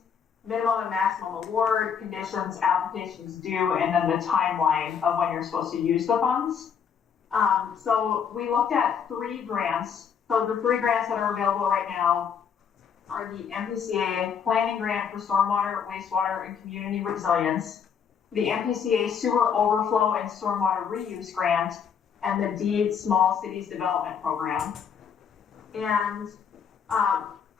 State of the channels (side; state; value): right; quieter; 7.2 dB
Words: minimum and maximum award, conditions, applications due, and then the timeline of when you're supposed to use the funds. So we looked at 3 grants. So the 3 grants that are available right now are the MPCA Planning Grant for Stormwater, Wastewater, and Community Resilience, the MPCA Sewer Overflow and Stormwater Reuse Grant, and the DEED Small Cities Development Program. And